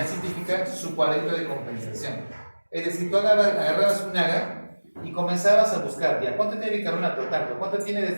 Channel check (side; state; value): both; inverted; correlation -1.00